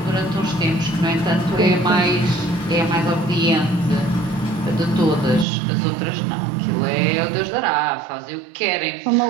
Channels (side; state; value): left; drops out; at 5.5 s